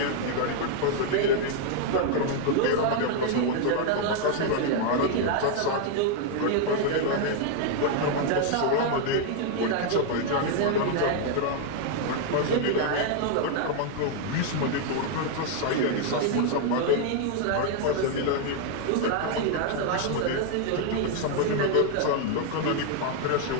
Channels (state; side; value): different; both; correlation 0.00